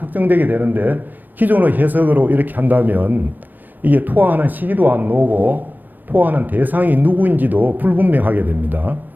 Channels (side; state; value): left; late; 0.089 ms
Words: 되는데 기존의 해석으로 이렇게 한다면 이게 투항하는 시기도 안 나오고 투항하는 대상이 누구인지도 불분명하게 됩니다.